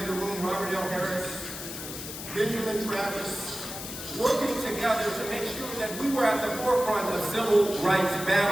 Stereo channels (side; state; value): left; noise; hiss, 9 dB below the sound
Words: in the room, Robert L. Harris, Benjamin Travis, working together to make sure that we were at the forefront of civil rights